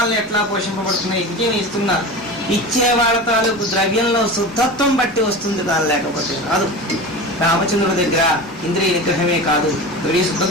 ఎట్లా పోషింపబడుతున్నాయి? విజయం ఇస్తున్నారు. ఇచ్చే వాళ్ళ తాలూకు ద్రవ్యంలో శుద్ధత్వం బట్టి వస్తుంది, కాదు లేకపోతే రాదు. రామచంద్రుడి దగ్గర ఇంద్రియ నిగ్రహమే కాదు, ద్రవ్య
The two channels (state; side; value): normal; both; correlation 0.30